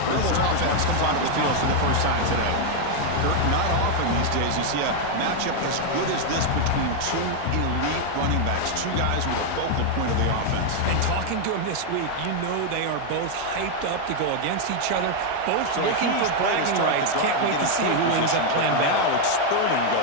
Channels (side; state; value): both; different; correlation 0.01